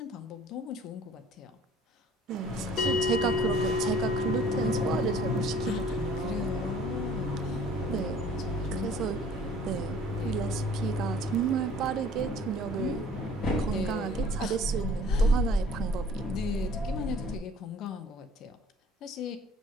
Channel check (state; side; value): normal; both; correlation 0.52